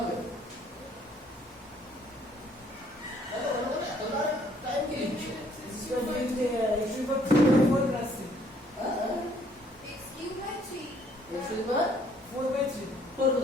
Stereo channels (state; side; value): normal; both; correlation 0.63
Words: হবে? টাইম কি লিখছো? इसका लिखते हैं x की power 4 plus 3 x cube by 3 x square 4 by 3 4